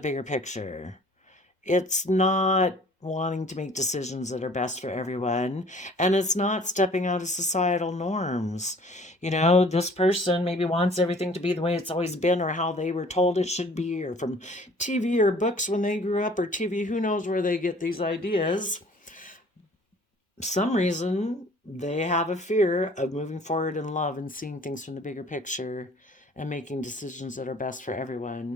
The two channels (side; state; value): both; normal; correlation 0.52